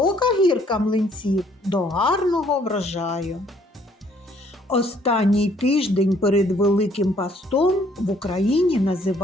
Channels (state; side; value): normal; both; correlation 0.63